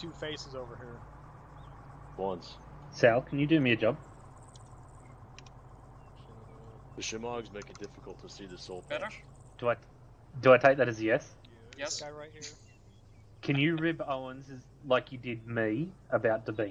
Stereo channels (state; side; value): identical; both; correlation 1.00